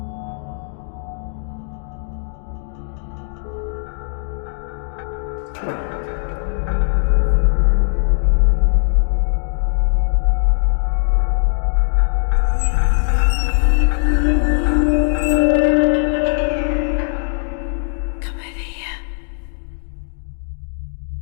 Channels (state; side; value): silent; right; digital silence